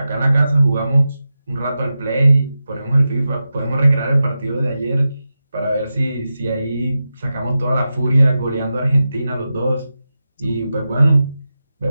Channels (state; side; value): inverted; both; correlation -0.92